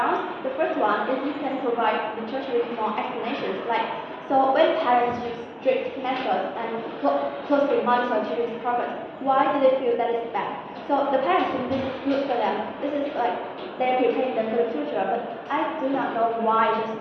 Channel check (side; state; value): both; identical; correlation 1.00